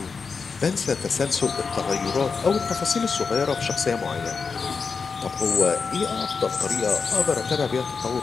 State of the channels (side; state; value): right; quieter; 5.2 dB